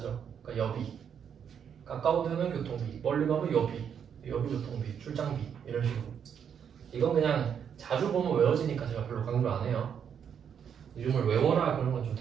그러니까 여비. 가까운 데는 교통비, 멀리 가면 여비, 여비교통비, 출장비 이런 식으로. 이건 그냥 자주 보면 외워지니까 제가 별로 강조 안 해요. 이름을 외워라 그런 건 좀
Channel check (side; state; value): left; quieter; 7.9 dB